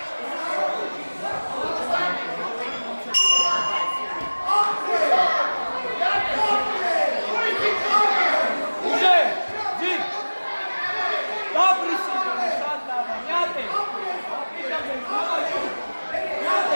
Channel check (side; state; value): both; inverted; correlation -1.00